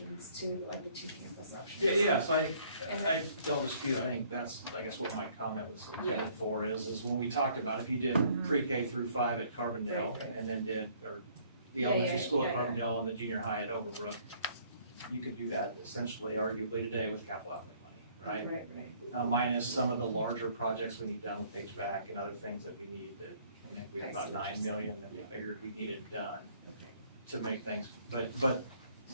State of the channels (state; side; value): inverted; both; correlation -0.61